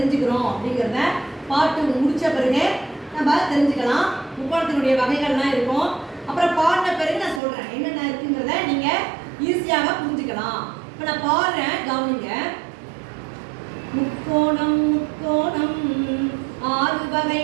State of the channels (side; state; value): left; drops out; at 7.4 s